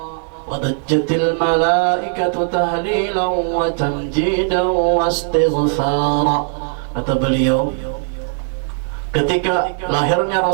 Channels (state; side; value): silent; left; digital silence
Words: wadajjatil malaikatu tahlilan wa tamjidan wastighfara. Kata beliau, ketika lahirnya